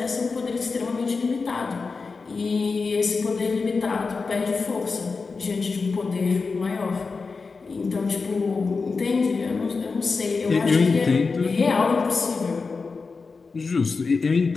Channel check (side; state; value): right; quieter; 4.5 dB